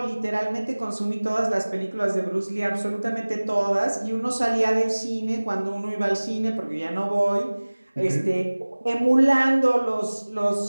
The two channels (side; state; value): both; inverted; correlation -1.00